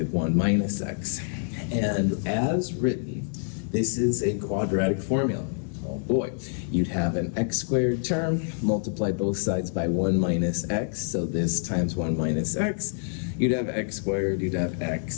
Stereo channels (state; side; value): silent; right; digital silence